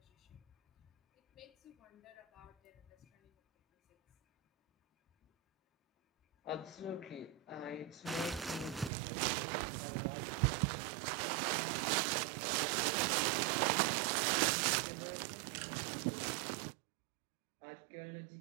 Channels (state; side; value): drops out; left; at 8.9 s